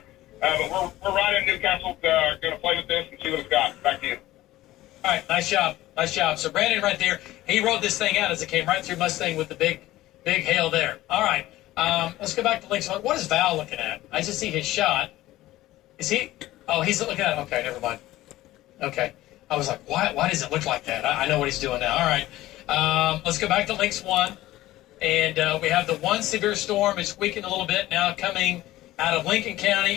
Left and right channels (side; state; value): right; quieter; 16.2 dB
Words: But we're right in Newcastle. Going to play with this and see what it's got. Back to you. All right, nice job. So Brandon right there, he rode this thing out as it came right through Mustang with the big hail there. All right, let's go back to Links. What is Val looking at? I just see his shot. Is he? Oh, he's looking at it. Okay, never mind. Okay. I was like, why does it look like that? I know what he's doing now. All right. Let's go back to Links 1. And we have the one severe storm. It's weakened a little bit now, coming out of Lincoln